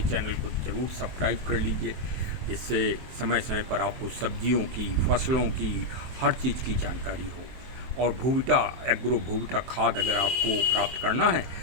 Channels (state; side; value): late; left; 23 ms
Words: को ज़रूर सब्सक्राइब कर लीजिए, जिससे समय समय पर आपको सब्जियों की, फसलों की, हर चीज़ की जानकारी हो। और भूविटा एग्रो भूविटा खाद अगर आपको प्राप्त करना है